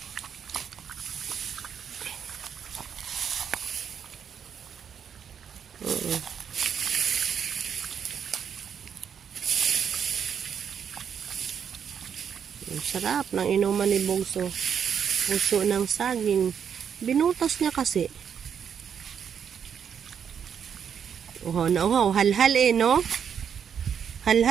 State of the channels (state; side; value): quieter; left; 7.7 dB